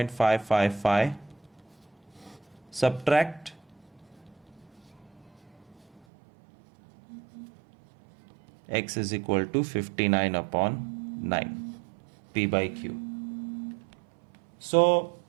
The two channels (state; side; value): drops out; left; at 6.0 s